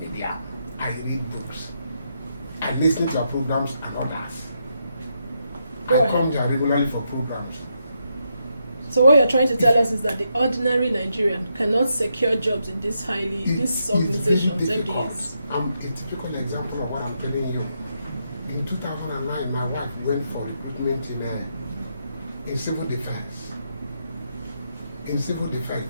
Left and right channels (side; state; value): both; inverted; correlation -0.81